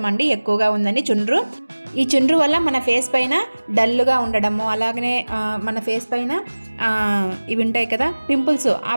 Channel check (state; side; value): inverted; both; correlation -1.00